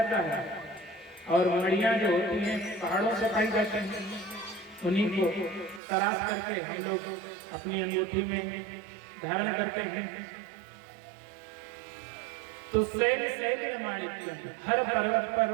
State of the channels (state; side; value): drops out; left; at 5.8 s